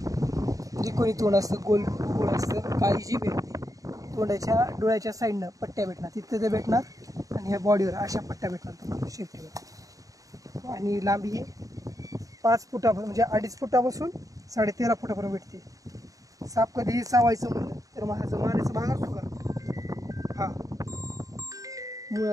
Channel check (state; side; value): late; left; 0.17 ms